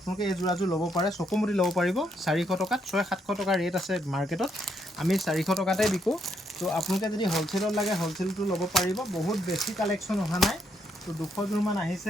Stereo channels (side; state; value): both; normal; correlation 0.75